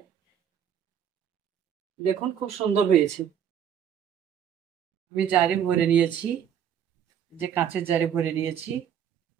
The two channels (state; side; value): quieter; left; 9.0 dB